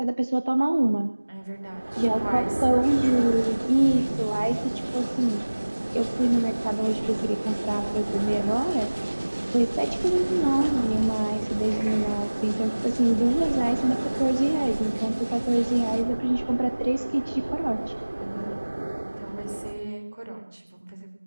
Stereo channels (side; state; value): both; inverted; correlation -1.00